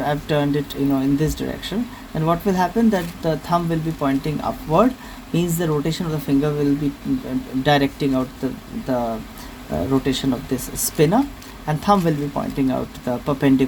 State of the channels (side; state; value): both; identical; correlation 1.00